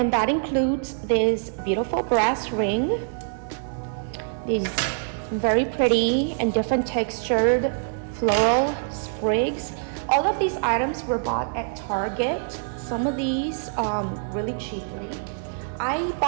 that includes this beautiful brass ring, these very pretty and different textured floral sprigs. All of these items were bought at Target. Some of these really cheaply. I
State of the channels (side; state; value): left; silent; digital silence